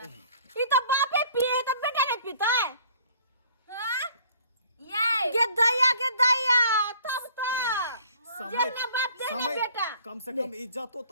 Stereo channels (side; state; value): both; inverted; correlation -0.55